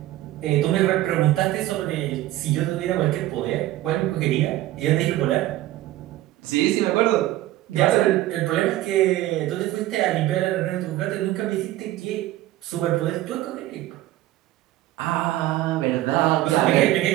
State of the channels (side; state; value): left; quieter; 15.5 dB